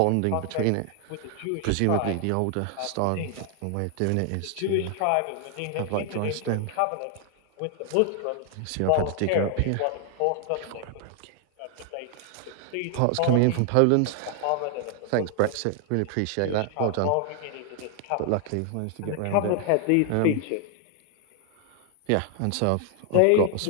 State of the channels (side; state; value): both; different; correlation 0.00